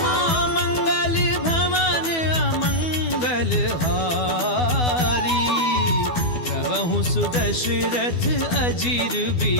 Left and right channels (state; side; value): late; right; 12 ms